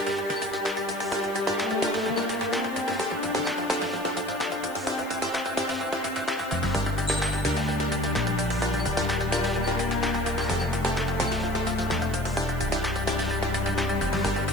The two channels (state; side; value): noise; right; hiss, 19 dB below the sound